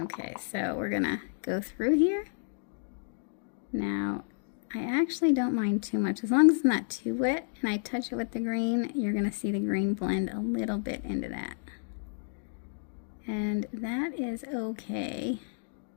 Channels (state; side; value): silent; right; digital silence